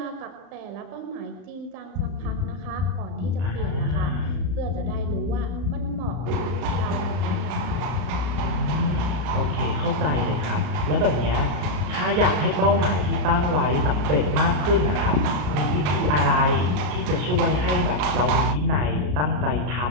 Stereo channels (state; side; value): late; left; 35 ms